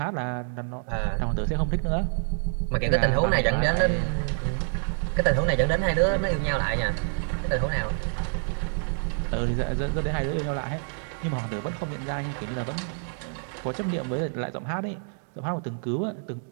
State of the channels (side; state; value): left; silent; 60 dB below the other